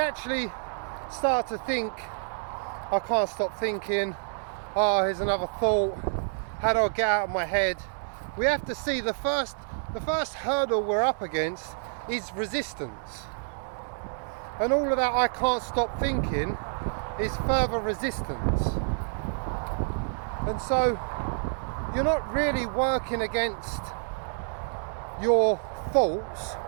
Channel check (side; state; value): left; silent; digital silence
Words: start to think, I can't stop thinking, here's another thought, how do I get out of my head? We have to see the first hurdle we're up against is resistance. And all of that I can't stop thinking is further resistance. And so you're not really working against your thoughts,